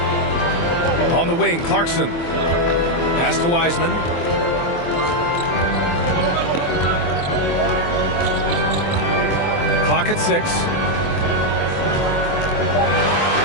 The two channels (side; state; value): right; late; 24 ms